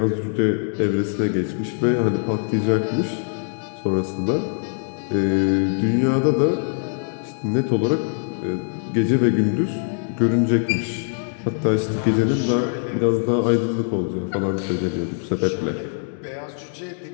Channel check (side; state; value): right; silent; 64 dB below the other